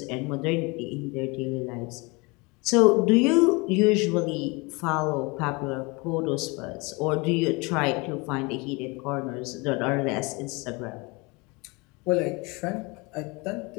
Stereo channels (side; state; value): right; quieter; 27.1 dB